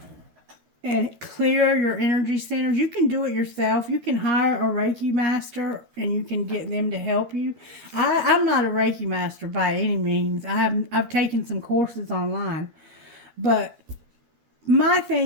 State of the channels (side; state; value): left; late; 13 ms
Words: and clear your energy centers, you can do it yourself. You can hire a Reiki master and you can get them to help you. I'm not a Reiki master by any means. I've taken some courses online. But my